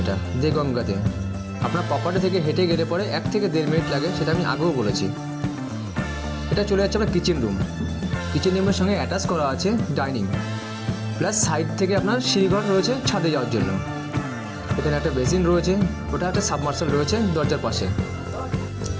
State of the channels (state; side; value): identical; both; correlation 1.00